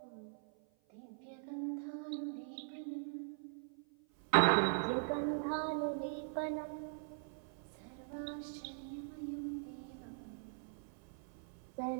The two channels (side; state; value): left; silent; 50 dB below the other